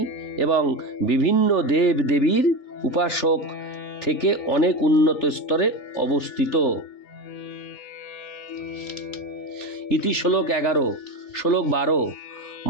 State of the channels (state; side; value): late; right; 3.4 ms